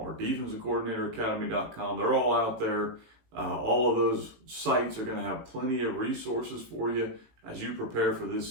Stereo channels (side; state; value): left; late; 18 ms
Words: defensivecoordinatoracademy.com. They're all out there. All of those sites are going to have plenty of resources for you as you prepare for this